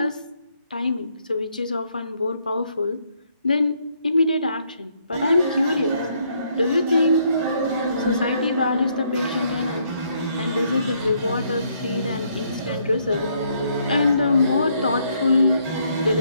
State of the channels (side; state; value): both; inverted; correlation -0.71